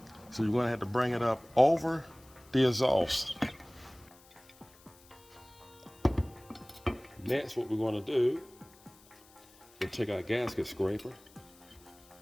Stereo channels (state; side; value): noise; left; hiss, 26 dB below the sound